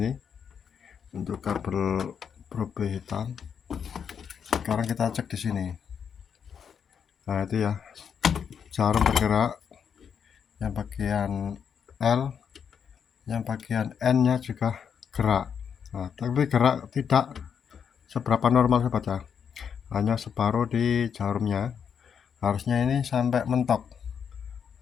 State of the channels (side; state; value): right; quieter; 7.4 dB